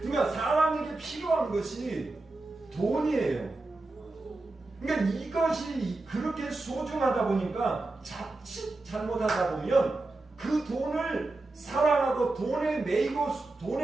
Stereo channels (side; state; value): left; quieter; 3.1 dB